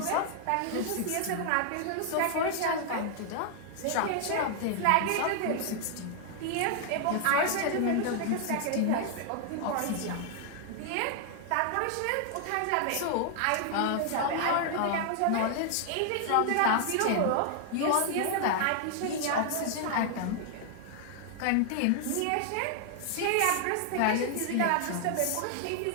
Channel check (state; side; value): different; both; correlation 0.00